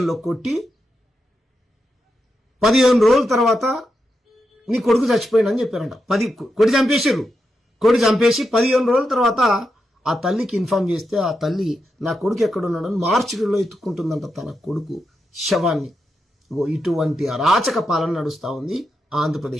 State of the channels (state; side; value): normal; both; correlation 0.86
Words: కొట్టి 15 రోజుల తర్వాత నీ కొడుకు చచ్చిపోయిందని చెప్పారంట. కొడి చంపేసి 15 రోజుల తర్వాత ఆ తల్లికి ఇన్ఫార్మ్ చేస్తే ఆ తల్లి నా కొడుకు ఎక్కడున్నాడని మార్చిలో ఎత్తుకుంటుందంట తన కొడుకు శవాన్ని. ఇటువంటి అరాచక పాలన నడుస్తూ ఉంది